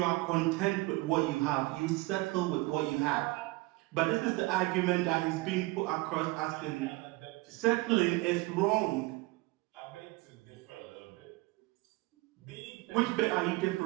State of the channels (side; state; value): left; quieter; 22.6 dB